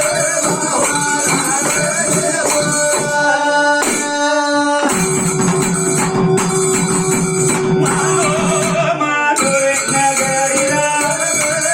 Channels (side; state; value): both; identical; correlation 1.00